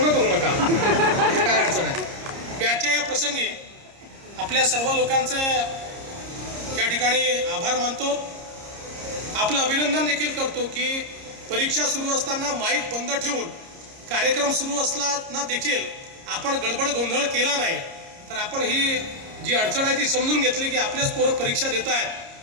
करू नका, काय अडचण आहे। मी आजच्या या प्रसंगी आपल्या सर्व लोकांचे या ठिकाणी आभार मानतो, आपलं अभिनंदन देखील करतो की परीक्षा सुरू असताना माईक बंद ठेवून कार्यक्रम सुरू असताना देखील आपण गडबड गोंधळ केला नाही, तर आपण ही जी अडचण आहे ती समजून घेतली की आपलेच पोरं परीक्षा देत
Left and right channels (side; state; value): left; late; 30 ms